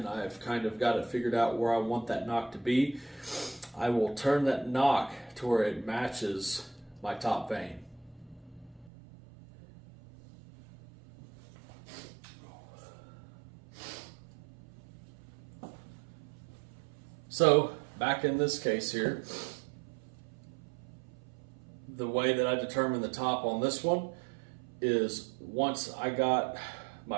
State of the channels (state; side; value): drops out; left; at 8.9 s